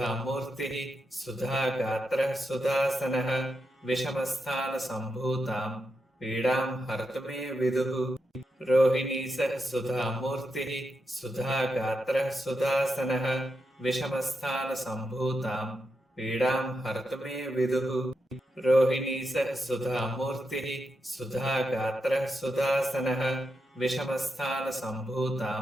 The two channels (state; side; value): normal; both; correlation 0.86